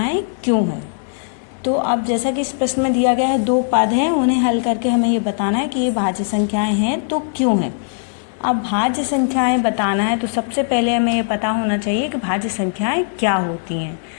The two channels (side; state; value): right; silent; digital silence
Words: क्यों हैं। तो अब जैसा कि इस प्रश्न में दिया गया है, 2 पद हैं, उन्हें हल करके हमें ये बताना है कि ये भाज्य संख्याएं हैं तो क्यों हैं। अब भाज्य संख्याएं बताना है तो सबसे पहले हमें ये पता होना चाहिए कि भाज्य संख्याएं क्या होती हैं।